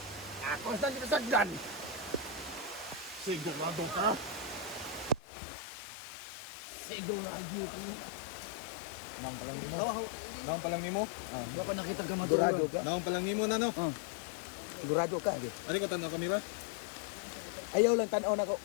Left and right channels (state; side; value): drops out; right; at 5.2 s